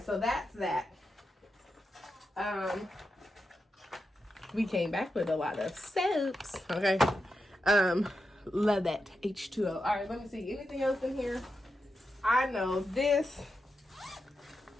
so that's that. We came back with a lot of soaps, okay? Love that H2O. All right, let me see. Anything else in here? I know this.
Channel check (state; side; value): normal; both; correlation 0.88